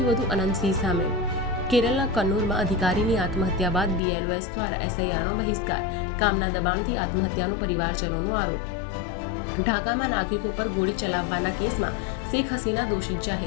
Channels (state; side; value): drops out; right; at 4.0 s